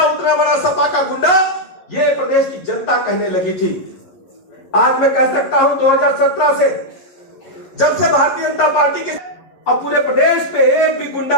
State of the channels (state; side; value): late; right; 11 ms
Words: उतना बड़ा सपा का गुंडा, ये प्रदेश की जनता कहने लगी थी। आज मैं कह सकता हूं 2017 से जब से भारतीय जनता पार्टी के अब पूरे प्रदेश में एक भी